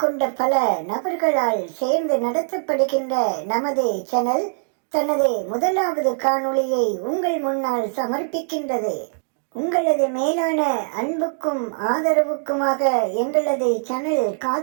கொண்ட பல நபர்களால் சேர்ந்து நடத்தப்படுகின்ற நமது சேனல் தனது முதலாவது காணொளியை உங்கள் முன்னால் சமர்ப்பிக்கின்றது. உங்களது மேலான அன்புக்கும் ஆதரவுக்குமாக எங்களது சேனல்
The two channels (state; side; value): silent; left; digital silence